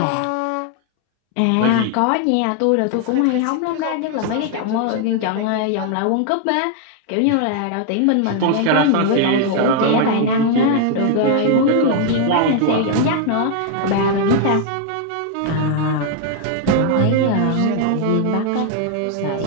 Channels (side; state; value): both; different; correlation 0.00